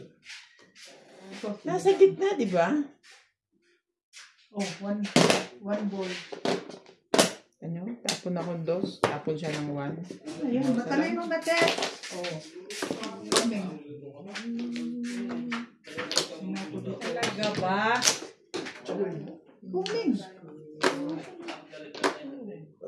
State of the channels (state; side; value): identical; both; correlation 1.00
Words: Nasa gitna, di ba? Oh, one bowl. Ano? Tapon ako 2. Tapon siya ng 1. Ayun, matalino na, Te. Oh. Kami. Talaga ba? Kuming.